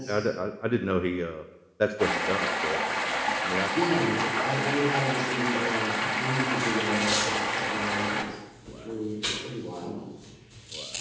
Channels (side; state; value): both; identical; correlation 1.00